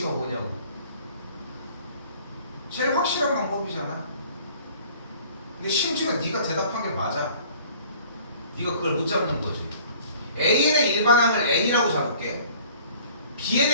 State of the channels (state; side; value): inverted; both; correlation -0.52